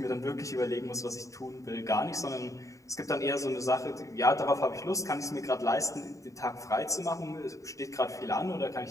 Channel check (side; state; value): right; late; 0.16 ms